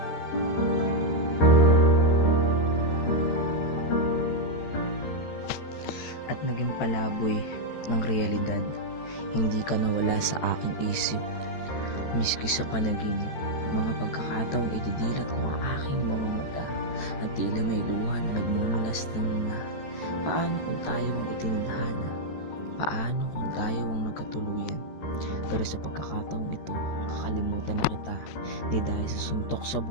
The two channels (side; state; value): right; late; 13 ms